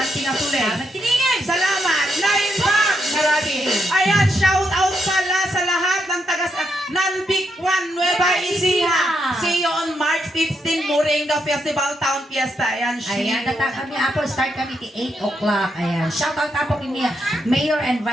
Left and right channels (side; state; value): both; normal; correlation 0.80